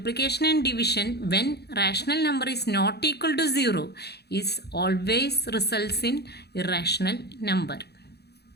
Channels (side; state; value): right; late; 0.48 ms